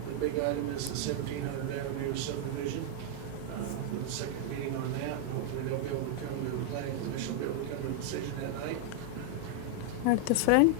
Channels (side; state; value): both; different; correlation 0.00